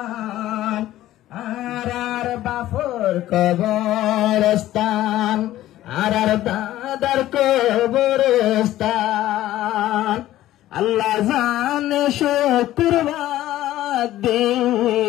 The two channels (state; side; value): quieter; right; 14.4 dB